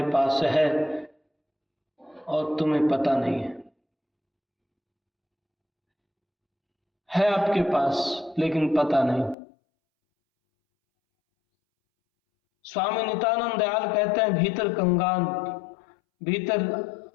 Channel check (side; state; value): right; drops out; at 9.3 s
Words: पास है और तुम्हें पता नहीं है आपके पास लेकिन पता नहीं। स्वामी नित्यानंद दयाल कहते हैं, भीतर कंगाल, भीतर